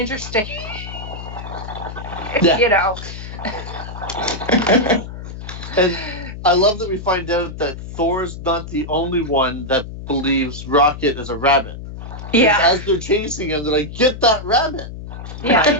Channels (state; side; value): noise; left; hum, 10 dB below the sound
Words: And I love that we find out that Thor's not the only one that believes Rocket is a rabbit. Yeah. As they're chasing him, they're like, "Get that rabbit!" Yeah.